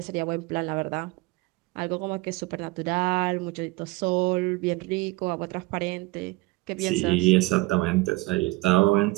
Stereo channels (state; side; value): quieter; left; 22.4 dB